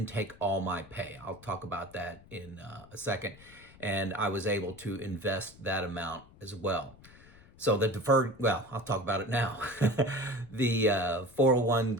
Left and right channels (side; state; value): left; noise; rumble, 23 dB below the sound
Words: take all my pay. I'll talk about that in a second. And I was able to invest that amount as well. So the deferred, well, I'll talk about it now. The